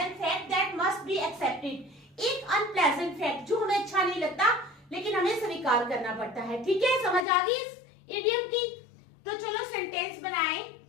fact that must be accepted, एक अनप्लेजेंट फैक्ट जो हमें अच्छा नहीं लगता लेकिन हमें स्वीकार करना पड़ता है, ठीक है। समझ आ गई इस इडियम की? तो चलो सेंटेंस बनाएं।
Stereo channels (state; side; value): drops out; right; at 7.2 s